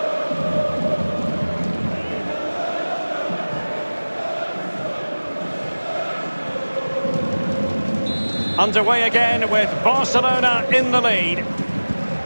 Underway again with Barcelona in the lead.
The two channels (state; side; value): inverted; both; correlation -1.00